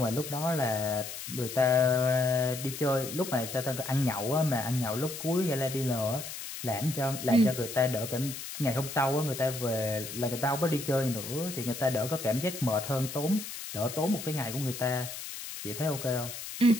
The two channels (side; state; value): left; noise; hiss, 9 dB below the sound